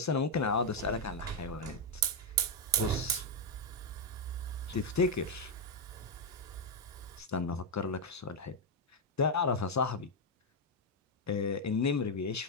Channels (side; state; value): both; normal; correlation 0.02